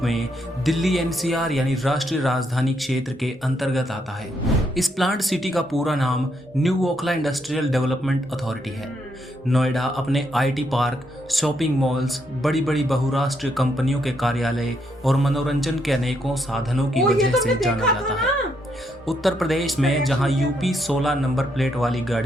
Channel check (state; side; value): normal; both; correlation 0.76